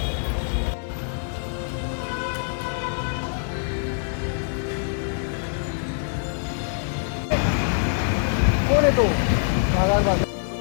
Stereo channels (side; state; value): right; silent; digital silence